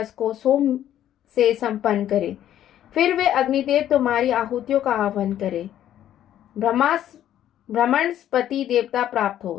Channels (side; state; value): right; quieter; 11.5 dB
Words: को सोम से संपन्न करे। फिर वे अग्निदेव तुम्हारी आहुतियों का आह्वान करे। ब्रह्मस्पति देवता प्राप्त